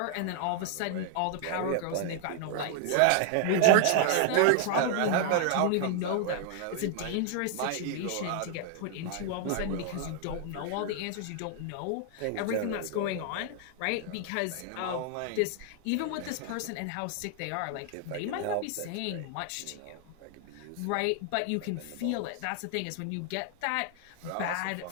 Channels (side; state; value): both; different; correlation 0.00